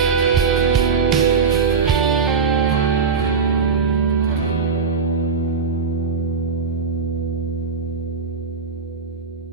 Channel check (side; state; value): left; quieter; 5.5 dB